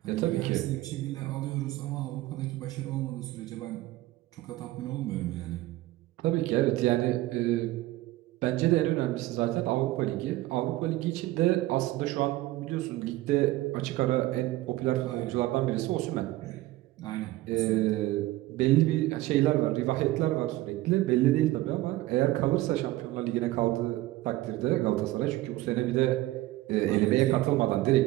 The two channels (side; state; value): left; quieter; 17.3 dB